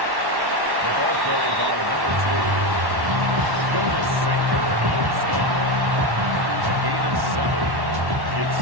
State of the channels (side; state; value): left; late; 1.1 ms